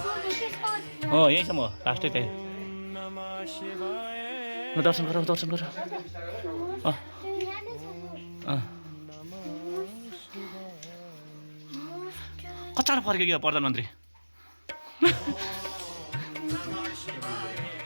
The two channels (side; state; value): both; inverted; correlation -1.00